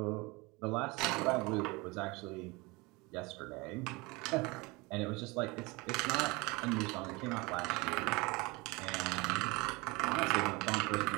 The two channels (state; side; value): quieter; left; 25.0 dB